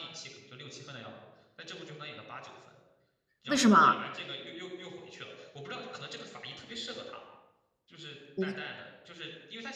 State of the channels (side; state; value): both; identical; correlation 1.00